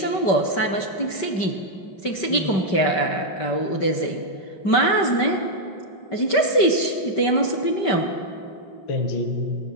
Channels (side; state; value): right; late; 5.2 ms